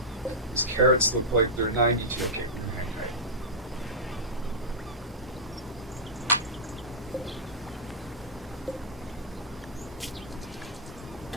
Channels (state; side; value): normal; both; correlation -0.12